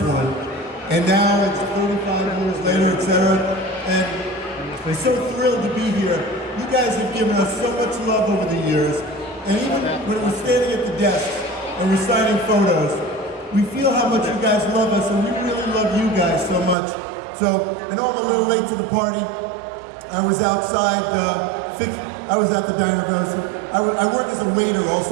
one, and now it's 35 years later, etc. And we're so thrilled to be here. You guys have given us so much love over the years, and even when we're standing at the desk and we're signing photos, we feel how much you guys love us, and we really love you guys so much. So, I know I'm a little late to the party. I was outside, I was at the diner. I work as a waiter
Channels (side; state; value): left; drops out; at 16.8 s